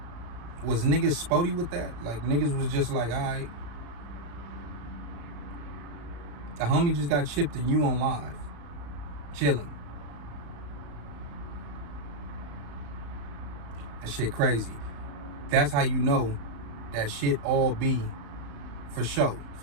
Was niggas spotty with that? Like, niggas was just like, all right. The homie just got chipped and you on live. Chilling. That shit crazy. That's how you know that shit all be for show,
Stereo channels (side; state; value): left; late; 35 ms